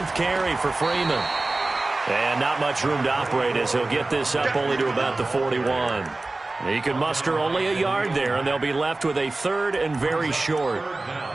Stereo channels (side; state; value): left; quieter; 3.1 dB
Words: carry for Freeman. And not much room to operate as he'll get this up only to about the 41. He can muster only a yard there, and they'll be left with a 3rd and very short.